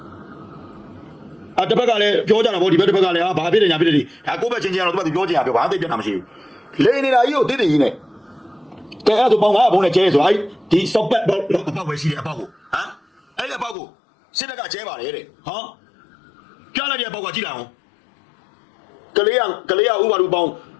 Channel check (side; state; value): right; drops out; at 13.8 s